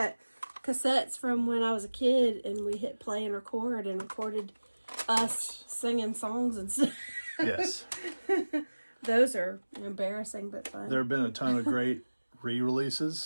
cassettes from when I was a kid, and we hit play and record, and recorded us singing songs and stuff. Yes. Those are embarrassing, but fun. There have been a ton of great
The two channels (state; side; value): inverted; both; correlation -1.00